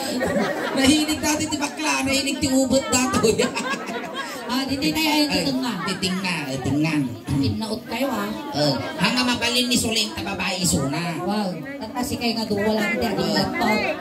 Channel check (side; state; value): both; identical; correlation 1.00